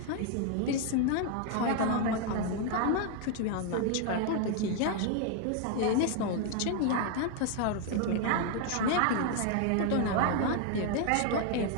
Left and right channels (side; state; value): both; different; correlation 0.00